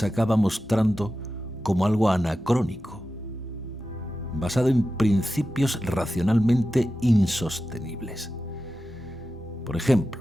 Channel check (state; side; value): normal; both; correlation 0.92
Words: acaba mostrando como algo anacrónico, basado en principios racionalmente insostenibles. Por